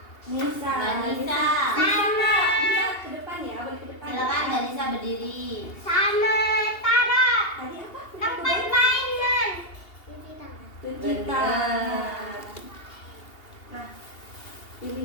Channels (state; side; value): late; right; 2.8 ms